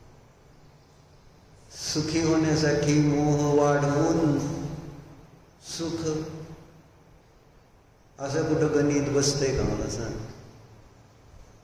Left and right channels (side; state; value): both; identical; correlation 1.00